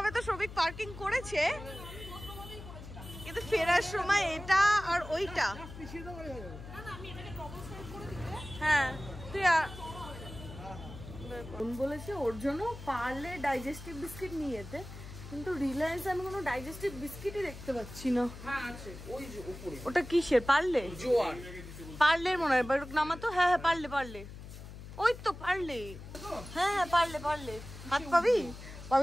তো সবিক পার্কিং করেছে, কিন্তু ফেরার সময় এটা আর ওইটা। হ্যাঁ, তুই বলেছে ওর জন্য পার্লে ডাইজেস্টিভ বিস্কিট নিয়ে যেতে, কিন্তু রিলায়েন্স আমি কোনো ডাইজেস্টিভ বিস্কিটই দেখতে পাচ্ছি না। হ্যাঁ আছে, ওই যে উপরে। ওটা কিসের? পার্লে? জোয়ার। পার্লের মনে হয়, নামাতো। হ্যাঁ হ্যাঁ, পার্লে পার্লে, ওই তো পার্লে। হ্যাঁ হ্যাঁ, পার্লে পার্লে। হাত পাবি?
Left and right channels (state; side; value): noise; left; hum, 13 dB below the sound